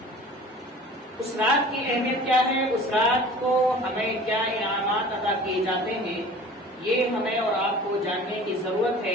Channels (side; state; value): both; normal; correlation 0.43